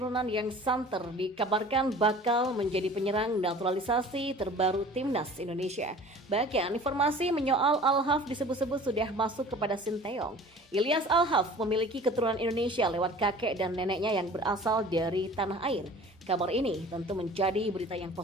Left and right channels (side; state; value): both; normal; correlation 0.44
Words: yang santer dikabarkan bakal menjadi penyerang naturalisasi terbaru timnas Indonesia. Bahkan informasi menyoal Alhaf disebut-sebut sudah masuk kepada Sinteyong. Ilyas Alhaf memiliki keturunan Indonesia lewat kakek dan neneknya yang berasal dari tanah air. Kabar ini tentu menjadi berita yang